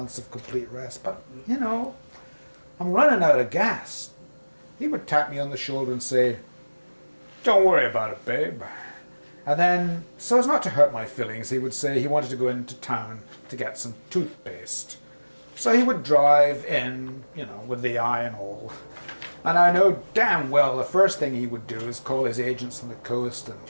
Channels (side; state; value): both; inverted; correlation -1.00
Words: of complete rest, but, I'm running out of gas. He would tap me on the shoulder and say, don't worry about it, babe. And then, so as not to hurt my feelings, he would say he wanted to go into town to get some toothpaste. So he would drive in, with the eye and all. And I know damn well the first thing he would do is call his agents on the coast and